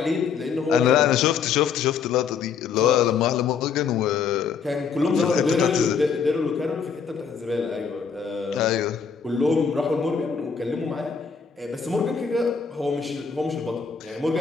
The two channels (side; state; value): right; quieter; 6.2 dB